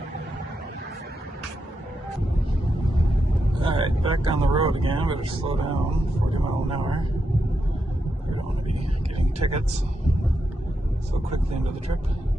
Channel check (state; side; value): normal; both; correlation 0.84